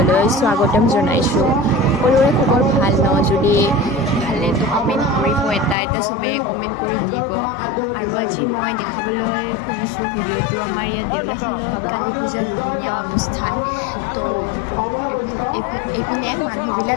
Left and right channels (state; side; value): drops out; right; at 5.8 s